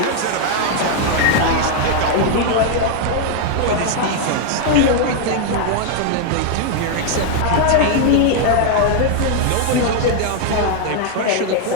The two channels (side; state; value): both; different; correlation 0.00